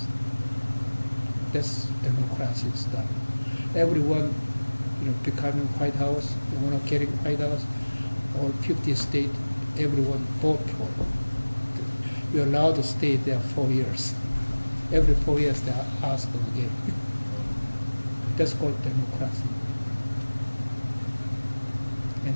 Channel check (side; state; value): both; inverted; correlation -1.00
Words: That's democracy stuff. Everyone, becoming White House, want to get White House, all 50 states, everyone vote for it. You're allowed to stay there 4 years. Every 4 years they ask again. That's called democracy.